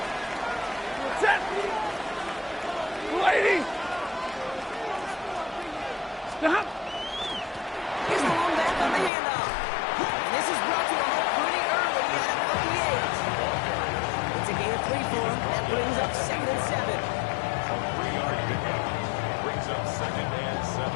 Set. Lady. Stop. Here's the one back on the handoff. And this is brought to a halt pretty early at about the 8. It's a gain of 3 for him. That brings up 2nd and 7. A 3-yard pickup. Brings up 2nd and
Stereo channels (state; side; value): drops out; right; at 9.1 s